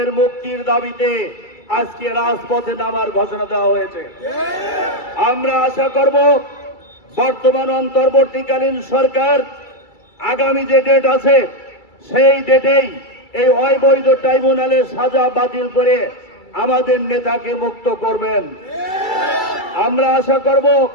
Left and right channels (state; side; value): late; right; 2.3 ms